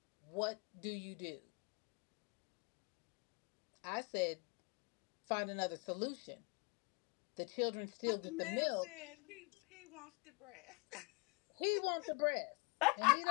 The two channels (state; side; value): quieter; right; 31.7 dB